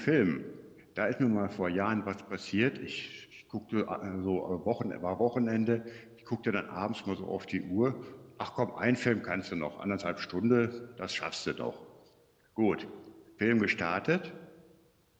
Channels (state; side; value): identical; both; correlation 1.00